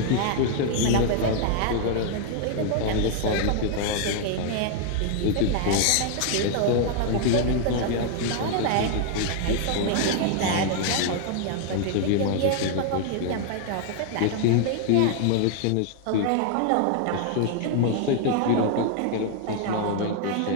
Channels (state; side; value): different; both; correlation 0.00